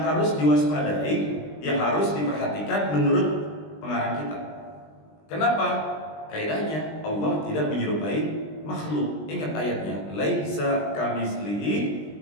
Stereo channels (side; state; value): right; late; 20 ms